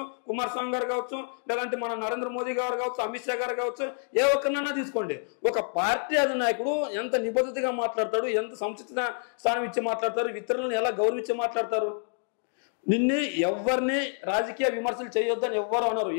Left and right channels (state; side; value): silent; right; 59 dB below the other